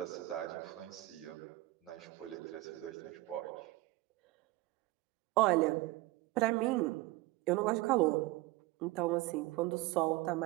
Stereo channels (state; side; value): quieter; left; 19.8 dB